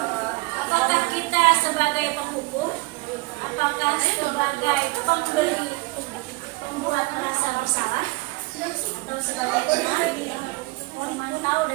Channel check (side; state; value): left; quieter; 25.2 dB